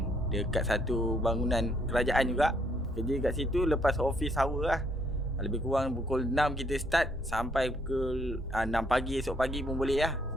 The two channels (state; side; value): normal; both; correlation 0.69